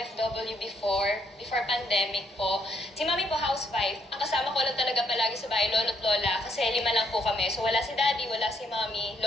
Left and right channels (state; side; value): normal; both; correlation 0.72